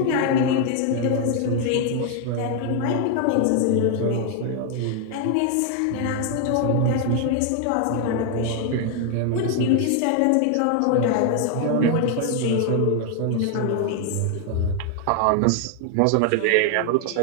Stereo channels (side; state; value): both; different; correlation 0.00